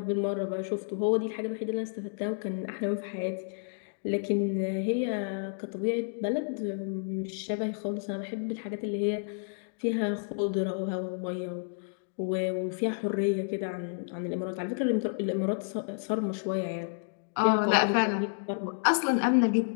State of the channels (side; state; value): right; silent; digital silence